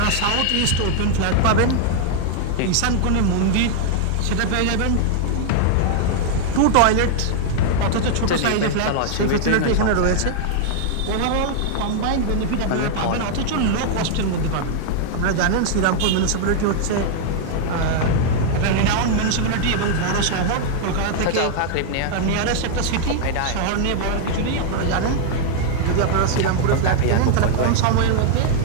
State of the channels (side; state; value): both; different; correlation 0.00